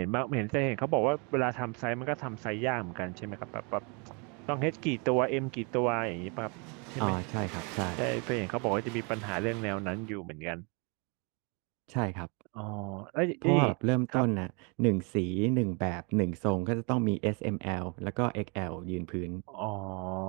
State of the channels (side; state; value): left; quieter; 33.3 dB